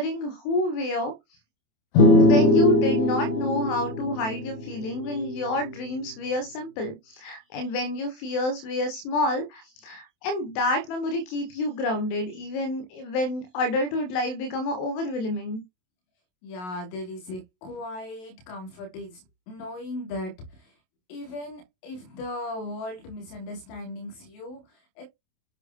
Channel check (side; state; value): right; late; 27 ms